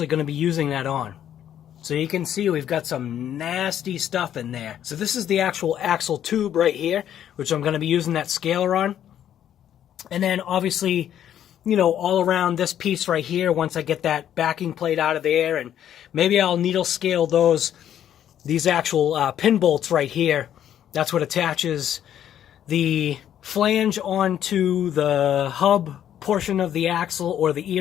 going to be using that on. So you can see we've got some nasty stuff in there. So this is the actual axle tube right here, which I'm going to be using that scaler on. And then obviously, you know, all around this piece right here, once I get that backing plate out of there, and maybe I'll needle scale these actual pin bolts right here. That's what attaches the flange onto the hub portion of the axle, or the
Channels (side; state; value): right; quieter; 10.4 dB